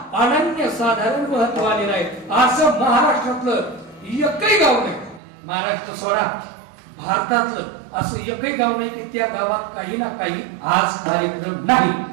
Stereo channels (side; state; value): left; drops out; at 5.2 s